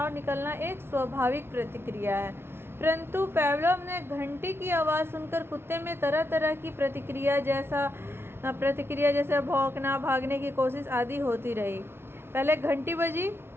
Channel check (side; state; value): left; late; 0.12 ms